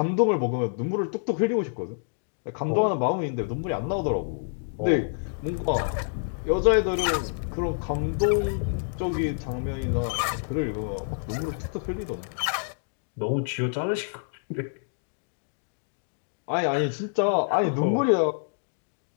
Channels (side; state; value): right; silent; digital silence